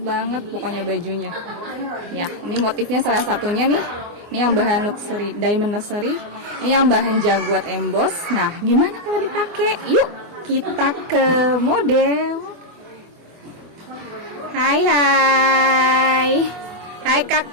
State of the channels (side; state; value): left; late; 24 ms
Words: banget pokoknya bajunya ya. Ini motifnya salah satunya nih, ini yang bahan luxury, diamond luxury, ini yang bahan jaguar emboss. Nah gimana kalau dipakai? Yuk kita ke model. Hai